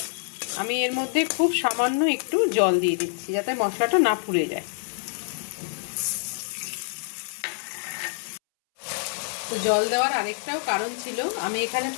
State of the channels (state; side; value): silent; right; 61 dB below the other